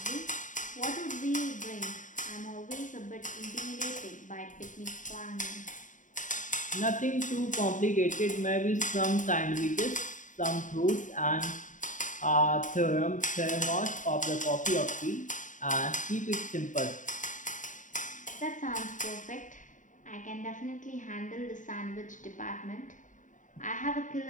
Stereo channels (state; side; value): late; right; 0.37 ms